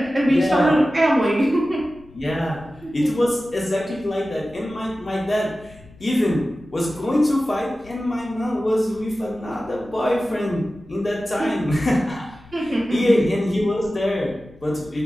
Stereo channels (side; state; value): left; noise; rumble, 24 dB below the sound